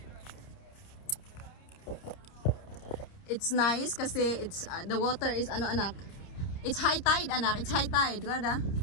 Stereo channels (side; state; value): right; late; 30 ms